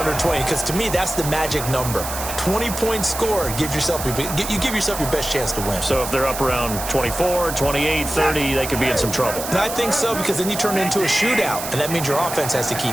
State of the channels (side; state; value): right; noise; hiss, 7 dB below the sound